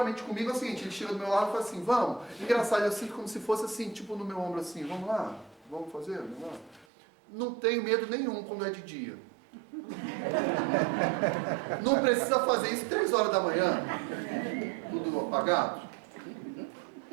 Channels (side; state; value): left; drops out; at 6.9 s